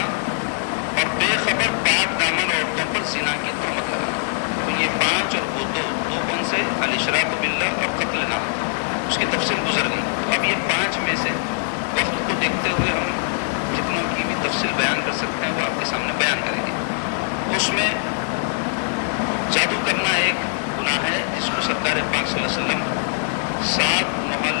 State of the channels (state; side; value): silent; right; digital silence